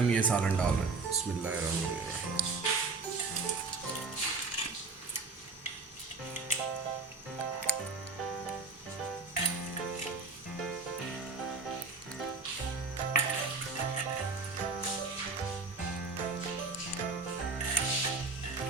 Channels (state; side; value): quieter; left; 4.1 dB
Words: ये सालन डाल रहे हैं। बिस्मिल्लाहिर्रहमानिर्रहीम।